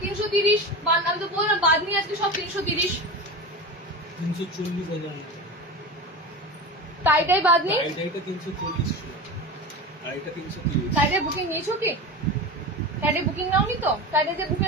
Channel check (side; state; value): both; normal; correlation 0.27